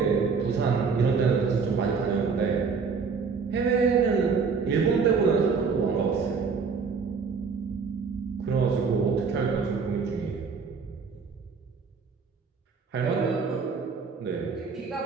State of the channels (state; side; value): quieter; left; 5.3 dB